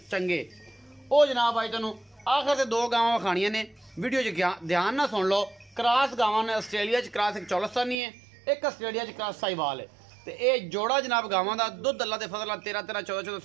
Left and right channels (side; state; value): left; drops out; at 8.0 s